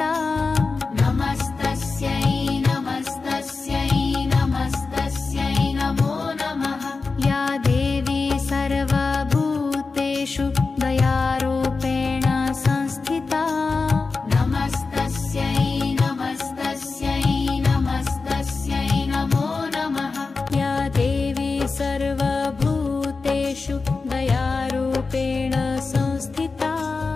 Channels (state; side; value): quieter; right; 4.2 dB